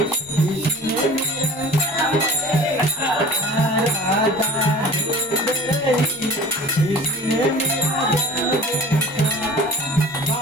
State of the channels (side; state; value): both; normal; correlation 0.43